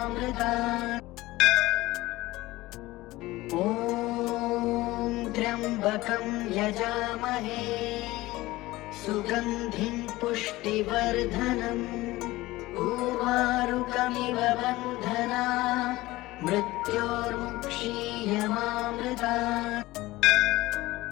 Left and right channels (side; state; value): right; quieter; 18.7 dB